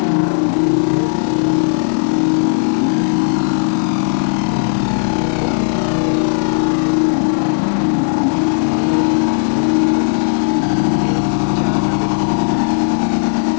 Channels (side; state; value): right; silent; 65 dB below the other